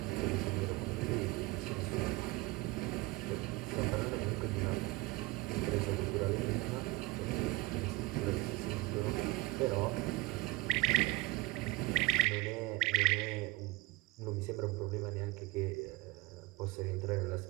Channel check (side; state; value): left; quieter; 20.5 dB